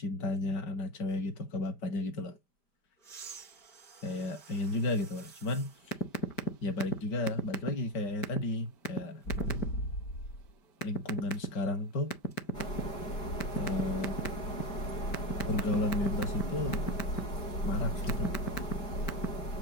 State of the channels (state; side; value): late; right; 5.1 ms